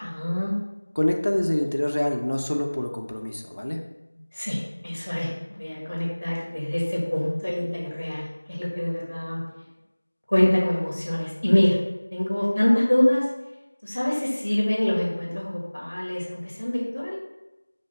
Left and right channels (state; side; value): inverted; both; correlation -1.00